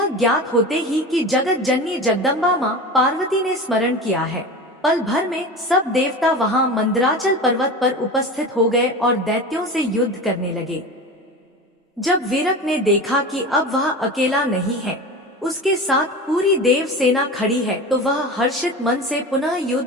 ज्ञात होते ही कि जगत जननी जगदम्बा मां पार्वती ने स्मरण किया है, पल भर में सब देवता वहां मंदराचल पर्वत पर उपस्थित हो गए और दैत्यों से युद्ध करने लगे। जब वीरक ने देखा कि अब वह अकेला नहीं है, उसके साथ पूरी देव सेना खड़ी है, तो वह हर्षित मन से पुनः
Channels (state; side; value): normal; both; correlation 0.30